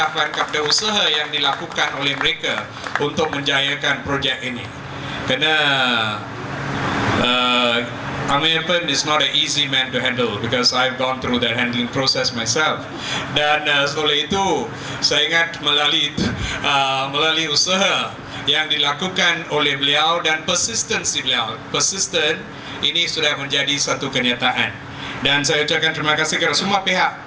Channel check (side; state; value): both; identical; correlation 1.00